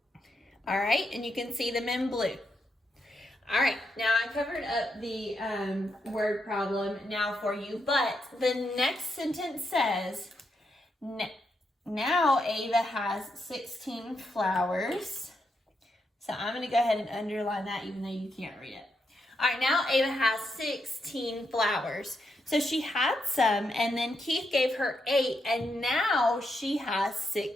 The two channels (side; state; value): both; normal; correlation 0.82